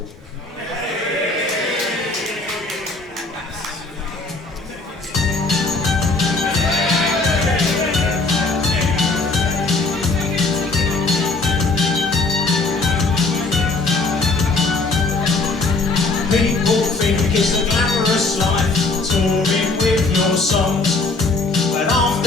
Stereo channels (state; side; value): quieter; right; 3.5 dB